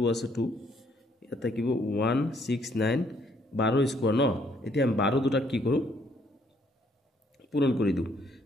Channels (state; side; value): normal; both; correlation 0.67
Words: আছে 2 ইয়াত থাকিব 169 12² ন এতিয়া আমি 12 দুটা কি কৰো পূৰণ কৰি দিও